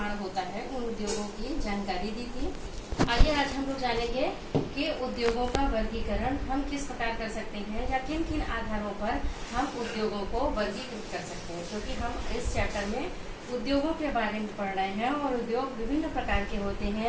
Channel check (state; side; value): identical; both; correlation 1.00